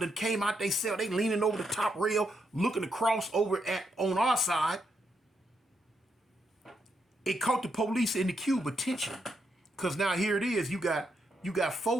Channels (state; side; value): normal; both; correlation 0.80